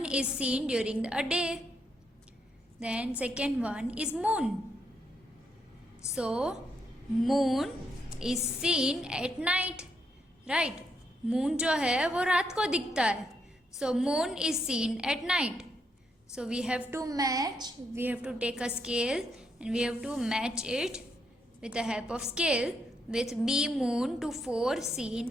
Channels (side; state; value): both; normal; correlation 0.78